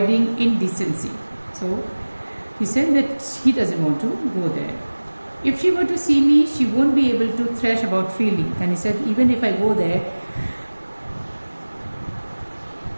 indecency. So he said that he doesn't want to go there. If she were to see me, she won't be able to thresh about freely. Then he said, even if I go there,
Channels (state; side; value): inverted; both; correlation -1.00